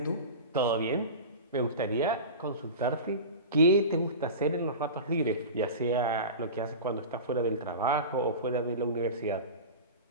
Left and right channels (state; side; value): inverted; both; correlation -0.30